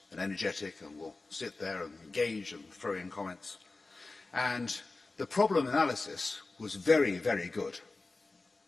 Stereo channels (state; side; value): quieter; right; 3.5 dB